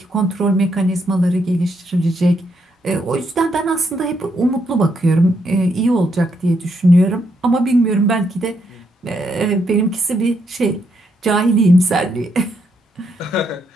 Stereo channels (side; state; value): both; normal; correlation 0.77